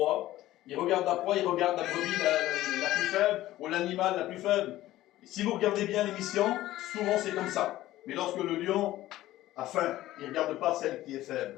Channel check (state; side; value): quieter; right; 15.3 dB